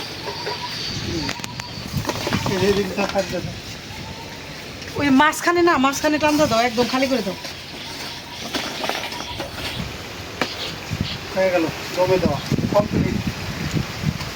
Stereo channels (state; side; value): identical; both; correlation 1.00